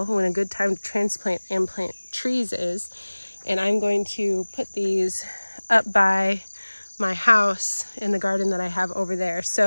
when a good time to transplant and plant trees is. And I'm going to put these up by my house in the garden that I have over there.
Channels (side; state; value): both; inverted; correlation -1.00